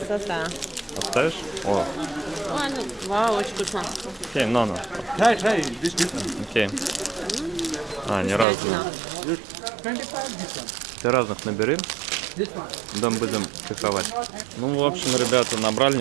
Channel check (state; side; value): drops out; left; at 8.5 s